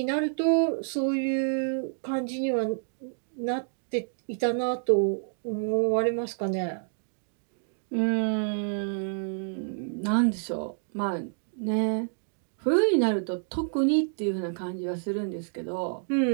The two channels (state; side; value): silent; left; digital silence